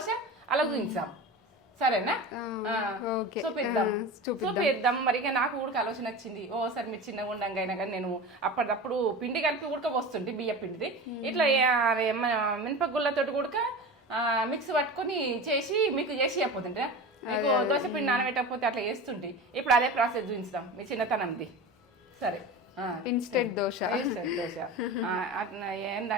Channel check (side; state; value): both; normal; correlation 0.30